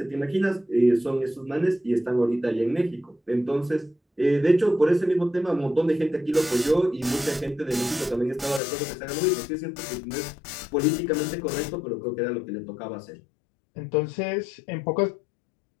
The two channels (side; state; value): right; drops out; at 8.6 s